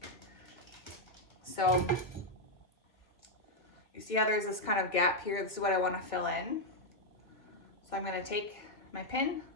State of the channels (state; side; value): late; right; 1.5 ms